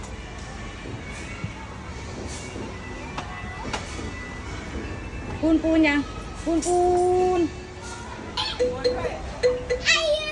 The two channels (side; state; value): both; identical; correlation 1.00